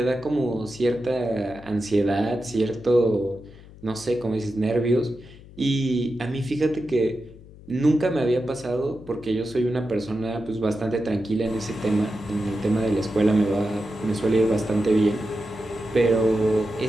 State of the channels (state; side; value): noise; left; hum, 20 dB below the sound